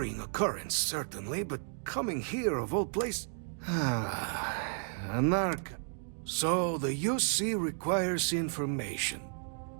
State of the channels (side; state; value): left; silent; 56 dB below the other